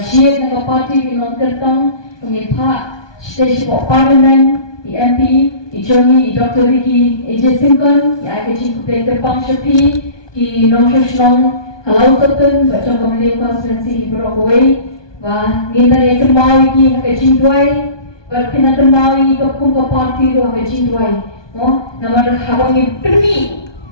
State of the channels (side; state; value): right; late; 1.2 ms